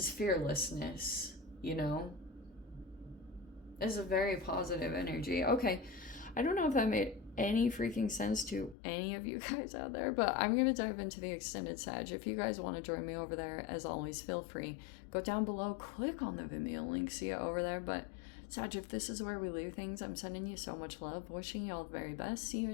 fearlessness, you know? It's a very positive energy. Okay, I don't know if that made any freaking sense to any of you guys out there, but I'm going to dive into the extended Sag. If you guys want to join me over there, as always, feel free. Go down below, click on the Vimeo link, see it over there. But Sag, if this is where we leave things, I'm sending you so much love, wishing you all the very best. See you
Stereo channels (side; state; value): right; drops out; at 8.8 s